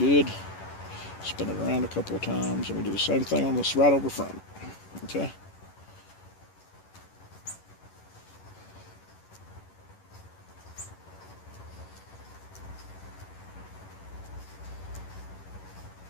Spin it around a couple of times, and we do the same thing on this right over front. Okay?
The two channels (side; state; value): right; late; 11 ms